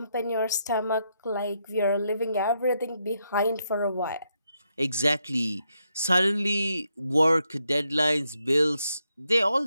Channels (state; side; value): inverted; both; correlation -0.80